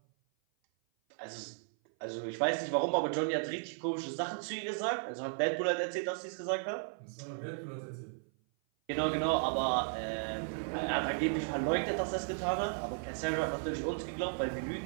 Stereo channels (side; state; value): left; silent; 54 dB below the other